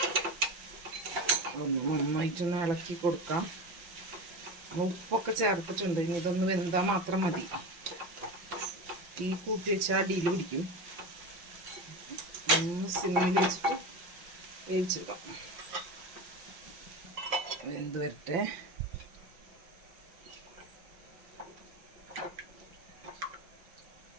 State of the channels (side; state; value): left; late; 5.9 ms